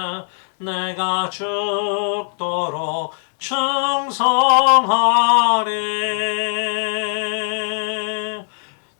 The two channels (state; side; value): silent; right; 60 dB below the other